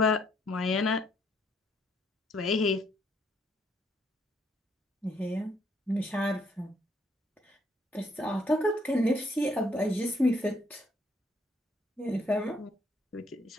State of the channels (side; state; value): both; normal; correlation 0.69